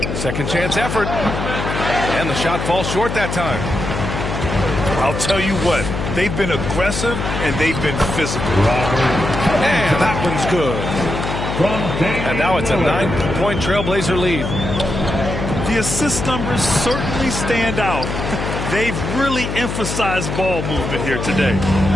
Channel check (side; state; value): left; noise; hum, 4 dB below the sound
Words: Second chance effort. And the shot falls short that time. I'll tell you what, they've been aggressive and they've been physical. And that one's good. And now it's a 9-point Trailblazer lead. The assist numbers certainly stand out. They've really emphasized ball movement here today.